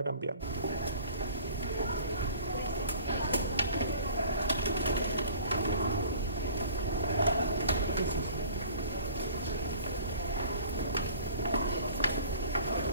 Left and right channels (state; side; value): inverted; both; correlation -0.48